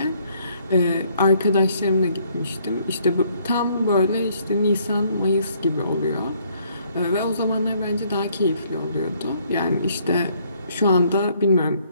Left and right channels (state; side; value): inverted; both; correlation -0.65